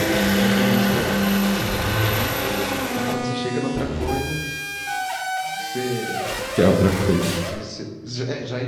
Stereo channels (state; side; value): identical; both; correlation 1.00